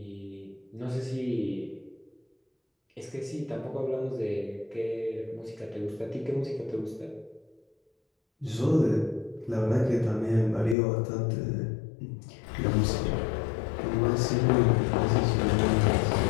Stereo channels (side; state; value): right; drops out; at 10.8 s